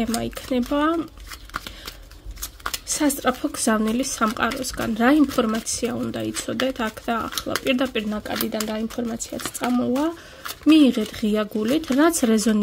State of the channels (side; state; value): both; identical; correlation 1.00